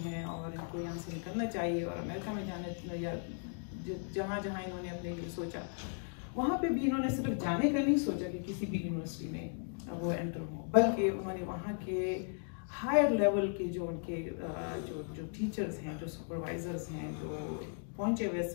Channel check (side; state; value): right; silent; 54 dB below the other